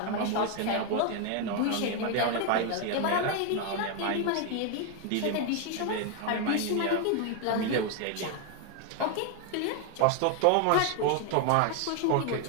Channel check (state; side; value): different; both; correlation 0.01